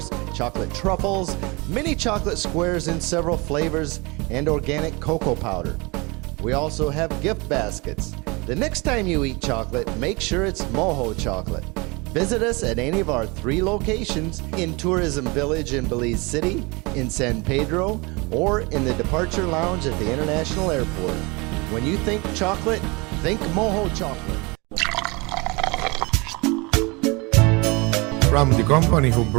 chocolate truffles, mini chocolate squares in several flavors, and organic cocoa powder. We also have gift baskets. The next time you eat chocolate, make sure it's Moho Chocolate. Visit us at any of our 3 locations in Tourism Village in Belize City, in San Pedro, or in the Departure Lounge at the International Airport. When you think chocolate, think Moho Chocolate. From the company who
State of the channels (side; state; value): left; quieter; 26.8 dB